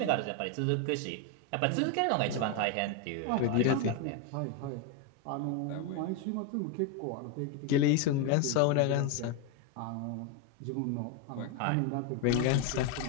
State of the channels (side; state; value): both; different; correlation 0.02